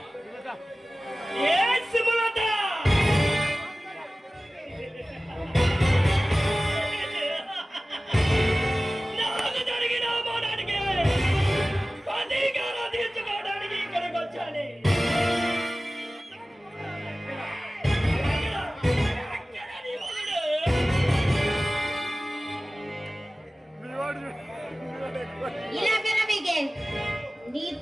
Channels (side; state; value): both; normal; correlation 0.97